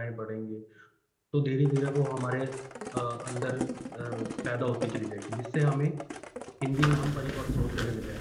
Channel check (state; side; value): identical; both; correlation 1.00